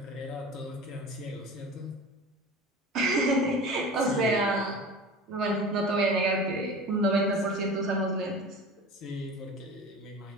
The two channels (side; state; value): both; normal; correlation 0.36